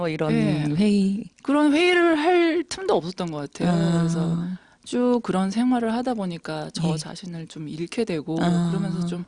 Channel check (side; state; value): both; identical; correlation 1.00